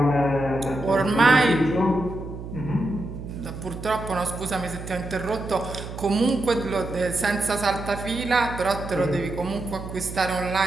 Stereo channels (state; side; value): noise; right; hum, 10 dB below the sound